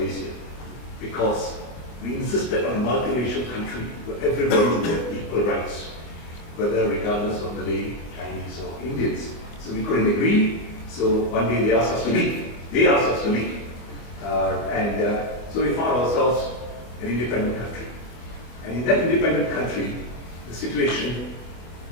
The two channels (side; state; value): right; late; 25 ms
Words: because we insisted on a multiracial country where everybody would have equal rights, whether regardless of Malay, Chinese, or Indians. So we couldn't agree, so one day they asked us to leave. So we found ourselves an independent country. And in that independent country, the situation,